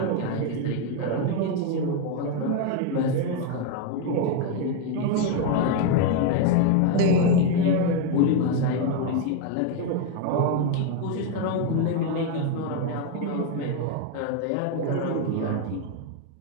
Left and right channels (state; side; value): different; both; correlation 0.01